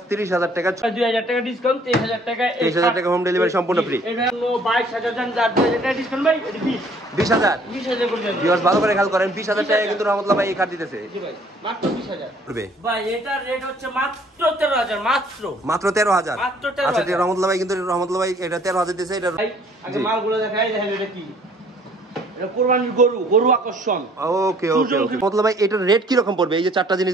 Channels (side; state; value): both; normal; correlation 0.58